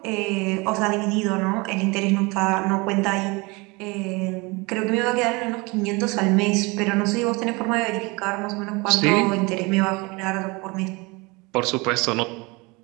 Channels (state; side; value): quieter; left; 26.0 dB